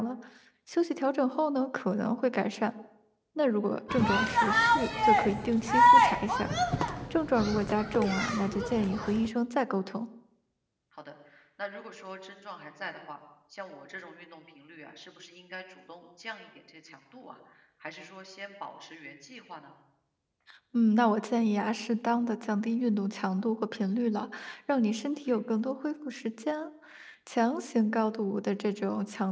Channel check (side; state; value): both; identical; correlation 1.00